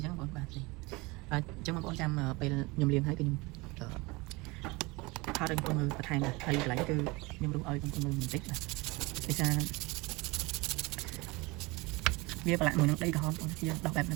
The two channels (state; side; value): quieter; left; 24.4 dB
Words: ញ្ចឹងបងបាទអញ្ចឹងបងប្អូនចាំពេលខ្ញុំលាងហើយគឺខ្ញុំថតឲ្យបងប្អូនមើលបន្ថែមហើយកន្លែងគឺខ្ញុំរុះឲ្យបងប្អូនមើលបន្តិចបាទដោយសារវាប្រឡាក់មួយនឹងដីក្រហមបងយើងដោះបែបហ្នឹ